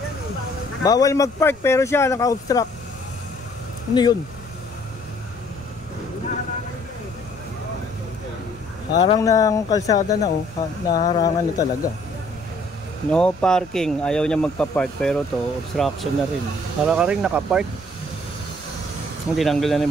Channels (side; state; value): left; noise; rumble, 25 dB below the sound